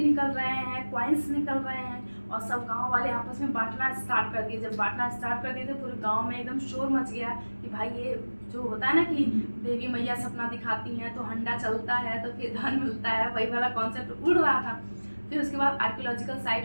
निकल रहे हैं, कॉइन्स निकल रहे हैं, और सब गांव वाले आपस में बांटना स्टार्ट कर दिए। जब बांटना स्टार्ट कर दिए तो पूरे गांव में एकदम शोर मच गया कि भाई ये जो होता है ना कि देवी मैया सपना दिखाती हैं तो हंडा चलता है तो फिर धन मिलता है, वही वाला कॉन्सेप्ट उड़ रहा था। फिर उसके बाद आर्कियोलॉजिकल साइट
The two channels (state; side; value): inverted; both; correlation -1.00